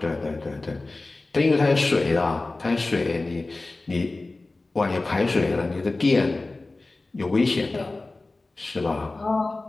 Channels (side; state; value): right; quieter; 3.2 dB